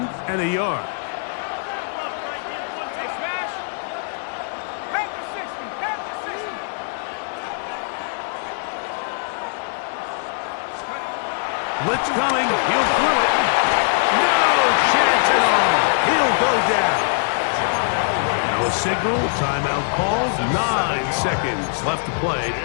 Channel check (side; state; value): right; silent; digital silence